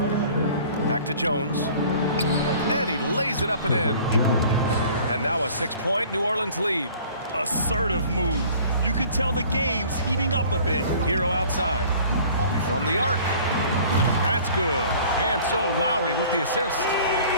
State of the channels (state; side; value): inverted; both; correlation -0.49